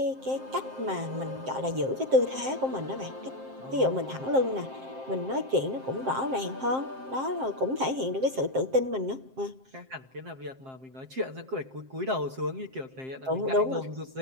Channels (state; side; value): late; left; 7.6 ms